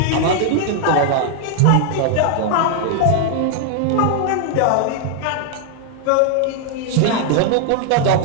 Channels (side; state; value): both; different; correlation 0.00